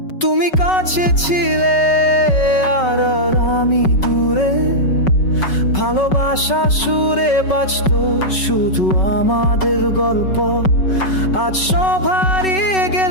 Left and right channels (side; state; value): right; late; 5.3 ms